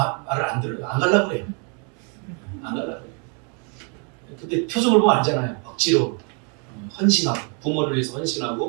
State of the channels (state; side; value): quieter; left; 37.6 dB